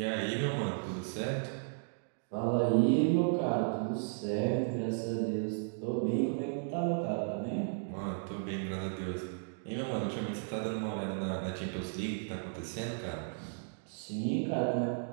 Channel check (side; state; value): left; silent; digital silence